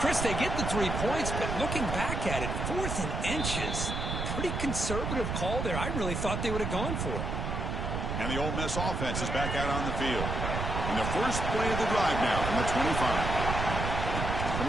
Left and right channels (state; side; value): noise; right; rumble, 2 dB below the sound